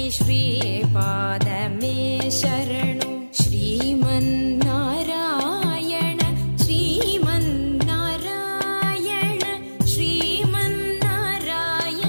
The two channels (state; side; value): inverted; both; correlation -1.00